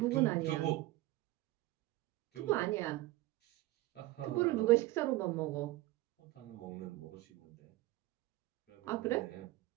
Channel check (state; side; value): quieter; left; 18.3 dB